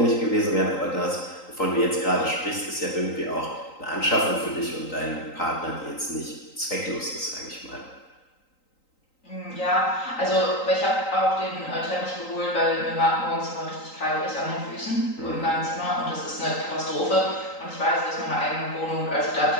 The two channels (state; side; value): late; right; 3.9 ms